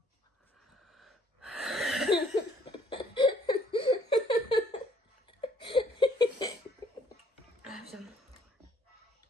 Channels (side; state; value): both; normal; correlation 0.62